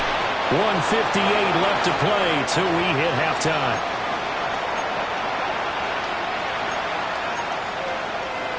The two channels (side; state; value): both; identical; correlation 1.00